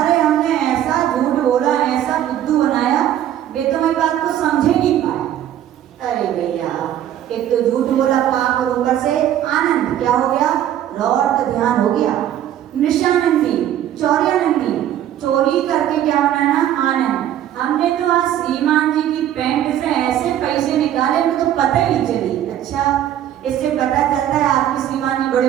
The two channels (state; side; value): quieter; left; 11.4 dB